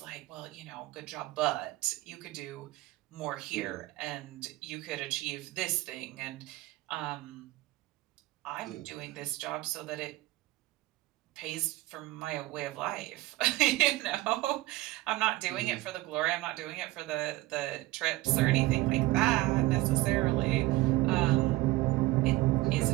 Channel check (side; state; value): left; quieter; 18.5 dB